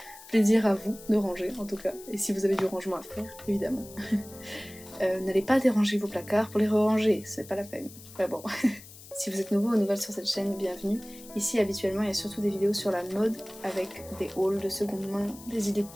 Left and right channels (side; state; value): left; noise; hiss, 18 dB below the sound